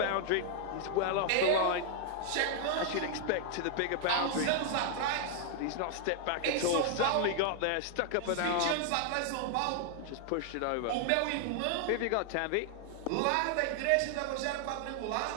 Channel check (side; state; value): both; different; correlation 0.00